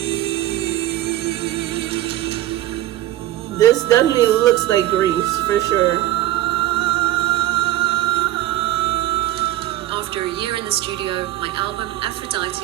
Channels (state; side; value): quieter; left; 14.7 dB